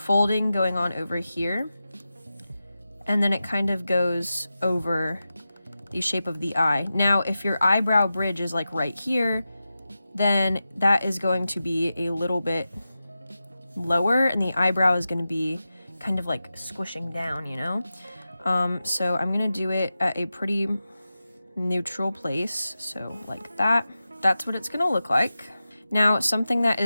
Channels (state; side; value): inverted; both; correlation -0.93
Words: going on over here, and then it kind of goes over the shape of the eye. Now, if your eyebrow bridge is like right here, then that is going to be a little bit lower and the eyebrow is going to be kind of like squishing down, you know? So I'm going to do it at a pretty neutral place. So like that. That's what it's going to look like. Now, something that